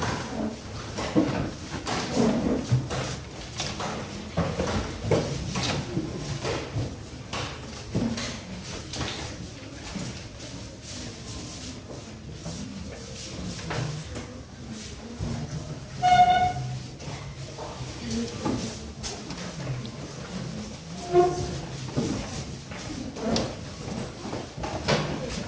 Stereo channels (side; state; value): both; identical; correlation 1.00